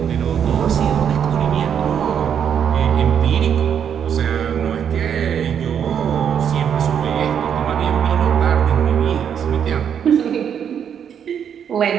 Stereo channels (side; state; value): left; quieter; 8.3 dB